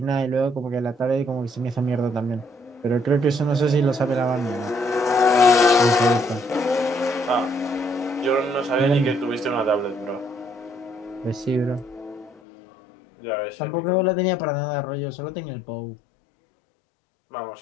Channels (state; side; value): drops out; right; at 12.4 s